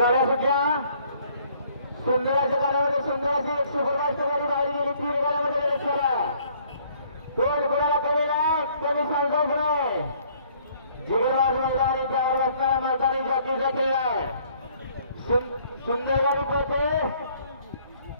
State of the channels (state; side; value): inverted; both; correlation -0.61